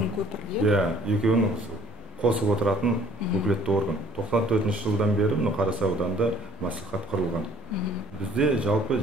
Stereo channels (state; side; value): normal; both; correlation 0.56